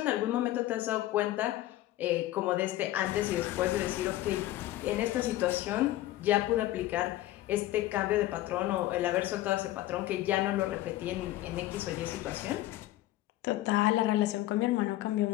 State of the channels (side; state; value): right; quieter; 15.5 dB